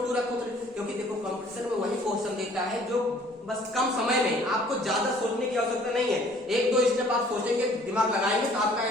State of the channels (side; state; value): both; normal; correlation 0.56